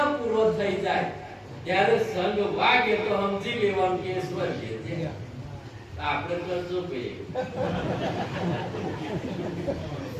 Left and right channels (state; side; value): identical; both; correlation 1.00